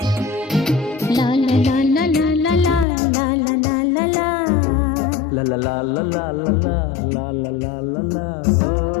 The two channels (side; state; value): right; drops out; at 2.9 s